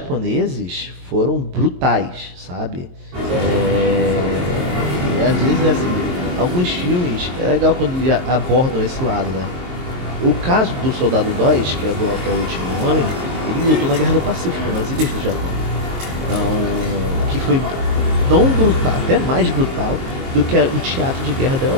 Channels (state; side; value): late; left; 22 ms